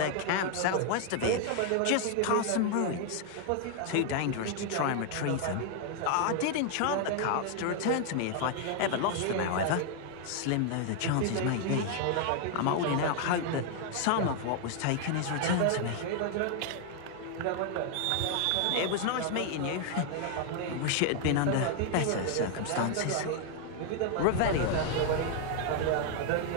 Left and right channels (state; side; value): different; both; correlation 0.00